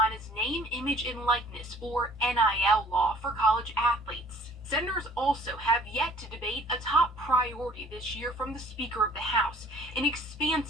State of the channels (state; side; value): normal; both; correlation 0.54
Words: name, image, and likeness, or NIL law for college athletes. Senators also have yet to debate a top priority this year from the Speaker of the House, an